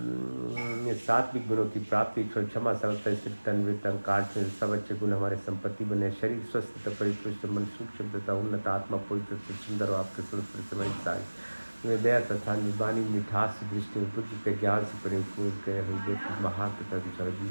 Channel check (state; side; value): inverted; both; correlation -1.00